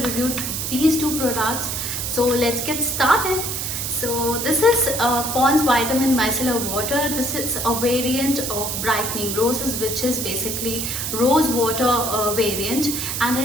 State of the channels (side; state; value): right; noise; hiss, 3 dB below the sound